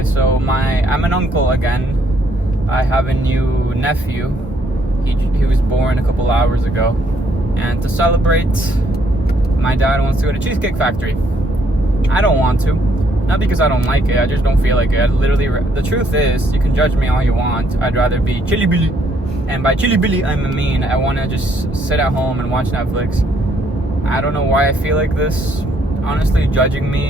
so I'm an uncle again. I have a new nephew. He was born a couple hours ago, and to celebrate, my dad wants to go to Cheesecake Factory. I don't want to, not because I don't like it, I just don't feel like it. The truth is, you can judge me all you want, I'd rather be Chili Billy, and by Chili Billy I mean I want to just sit at home and watch Netflix. I don't know why I feel like this. Honestly, judging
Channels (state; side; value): normal; both; correlation 0.69